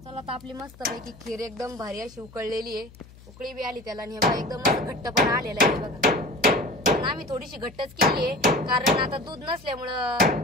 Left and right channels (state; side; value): noise; left; hum, 22 dB below the sound